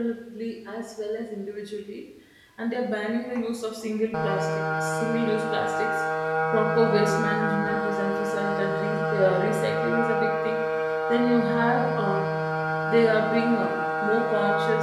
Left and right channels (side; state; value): both; identical; correlation 1.00